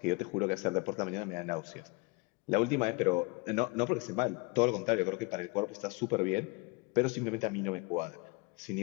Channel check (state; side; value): quieter; right; 27.2 dB